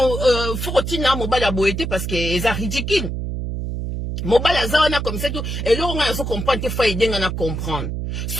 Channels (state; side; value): noise; right; hum, 4 dB below the sound